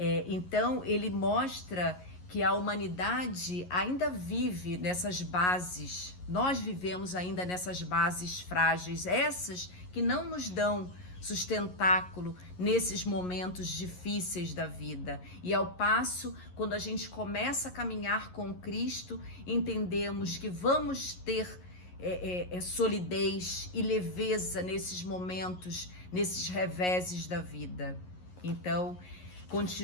Então, ele mostra que a humanidade ainda vive nessas bases, nós vivemos ainda nessas bases frágeis, essas que não nos dão sustentáculo nesses momentos difíceis da vida. E ao passo, quando a gente começa a caminhar com Cristo, entendemos que vamos ter solidez e leveza nesses momentos, nesses reveses da vida. Então,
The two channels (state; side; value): late; right; 11 ms